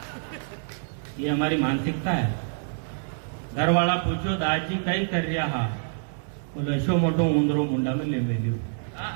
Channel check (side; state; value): left; silent; 61 dB below the other